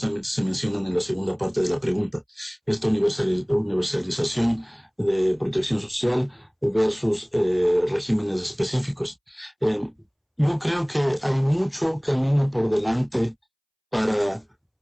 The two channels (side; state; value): both; identical; correlation 1.00